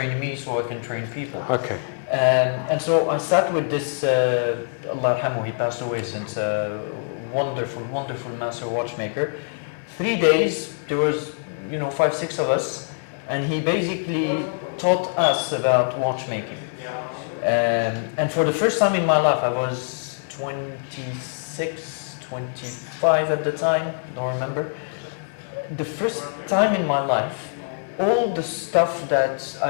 me so I can train people. Okay. And so I sat with this, Allah yarhamu, he passed away since, wonderful, wonderful master watchmaker. 3 days, there was 5, 6 of us, and he basically taught us about watchmaking. And for the first time in my life, I was 26, 25 at the time, don't remember. The first time in my life, all the stuff that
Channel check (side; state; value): right; silent; digital silence